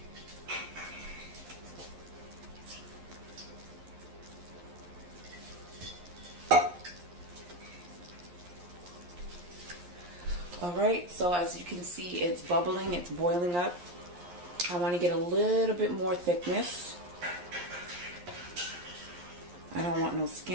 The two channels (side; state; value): left; late; 11 ms